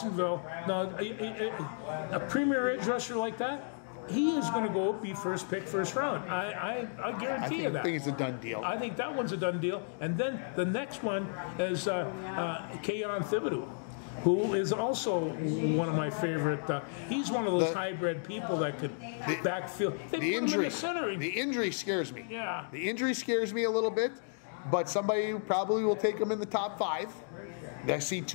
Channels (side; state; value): right; silent; digital silence